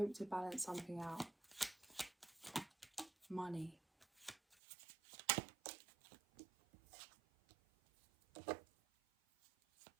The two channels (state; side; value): drops out; left; at 4.5 s